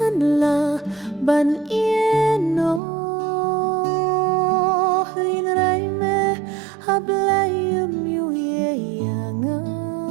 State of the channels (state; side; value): drops out; left; at 2.8 s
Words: ban ieno Hinray me hablayam yu yanga